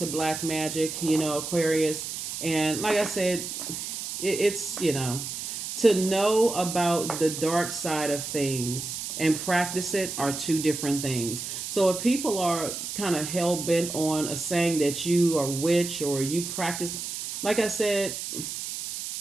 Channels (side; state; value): right; noise; hiss, 6 dB below the sound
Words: black magic, Aquarius. And like I said, it's to know about the dark side of things and practice it are two different things. So if people are kind of hell bent on a saying that you are witch or you practice, like I said,